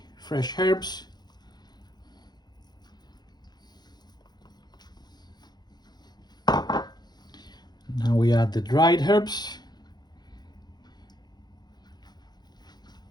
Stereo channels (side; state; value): right; late; 0.20 ms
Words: fresh herbs. Now we add the dried herbs.